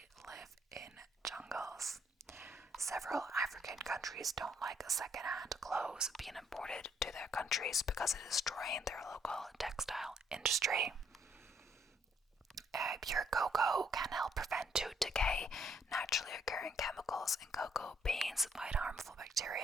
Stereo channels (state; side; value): normal; both; correlation 0.68